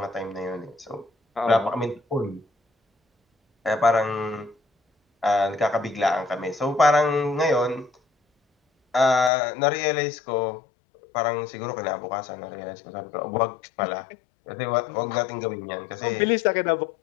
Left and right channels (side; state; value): right; drops out; at 9.3 s